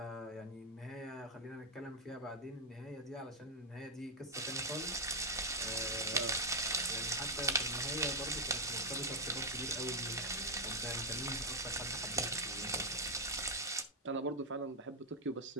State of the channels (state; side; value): normal; both; correlation 0.00